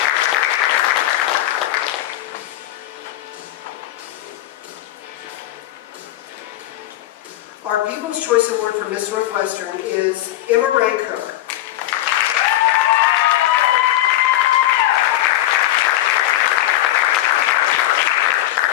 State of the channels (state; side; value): quieter; right; 14.4 dB